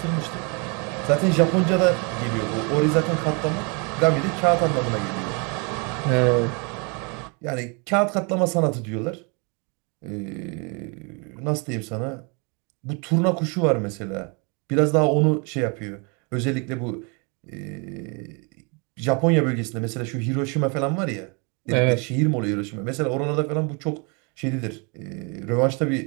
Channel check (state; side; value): quieter; left; 33.1 dB